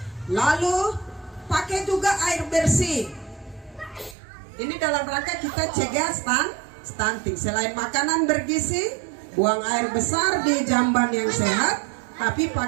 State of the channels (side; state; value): left; drops out; at 4.2 s